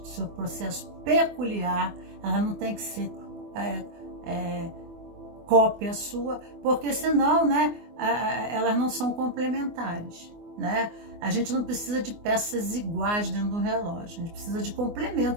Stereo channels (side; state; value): left; late; 24 ms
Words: seu processo peculiar. Ela não tem que ser cópia sua, porque senão, né, elas não são complementares, né? A gente não precisa de peças iguais dentro do relógio, a gente precisa de